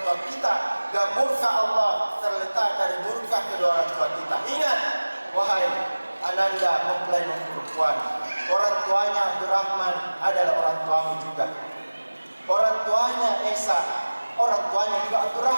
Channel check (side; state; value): both; inverted; correlation -1.00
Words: kita, dan murka Allah terletak dari murka kedua orang tua kita. Ingat, wahai ananda mempelai perempuan, orang tuanya Abdurrahman adalah orang tuamu juga. Orang tuanya Esa, orang tuanya juga